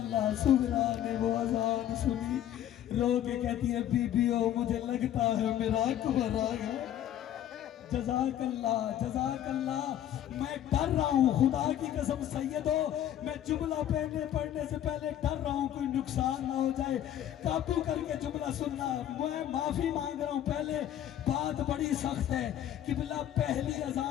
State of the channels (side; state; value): right; quieter; 11.3 dB